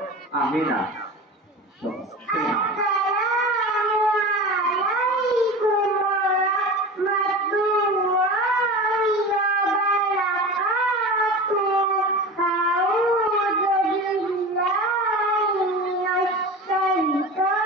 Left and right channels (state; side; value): normal; both; correlation 0.31